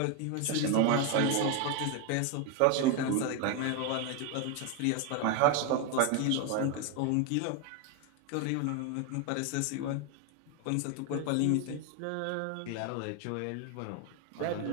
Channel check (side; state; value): both; different; correlation 0.01